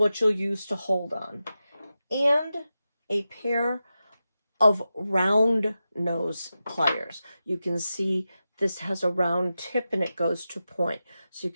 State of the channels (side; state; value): both; inverted; correlation -0.92